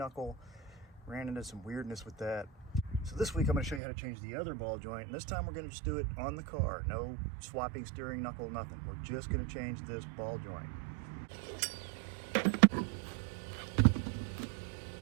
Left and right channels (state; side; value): drops out; left; at 3.8 s